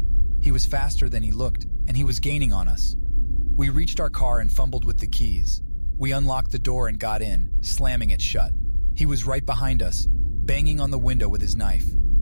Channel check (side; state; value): both; inverted; correlation -1.00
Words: He was faster than he looked, and he was gaining on us. We reached our car and fumbled with the keys. We unlocked the door and got in, slamming it shut. He was right behind us, banging on the window with his knife.